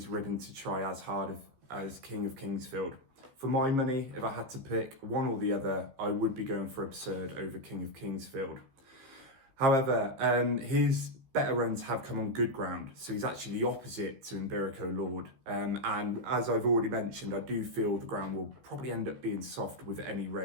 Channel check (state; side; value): late; left; 15 ms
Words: ridden to try as hard as King of Kingsfield. For my money, if I had to pick one or the other, I would be going for Absurd over King of Kingsfield. However, his better runs have come on good ground, so he's actually the opposite to Imberico Lord. And as I've already mentioned, I do feel the ground will probably end up being soft with any